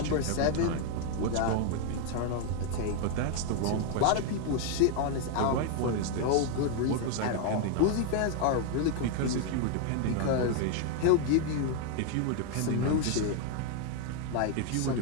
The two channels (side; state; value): both; different; correlation 0.01